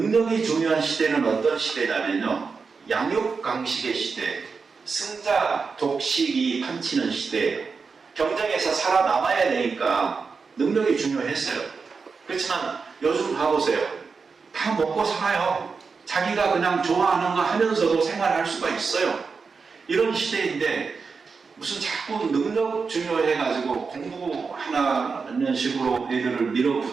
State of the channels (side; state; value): left; quieter; 5.0 dB